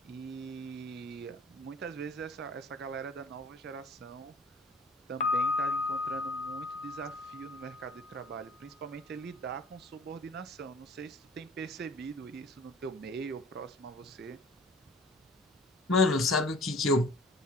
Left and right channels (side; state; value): both; normal; correlation 0.48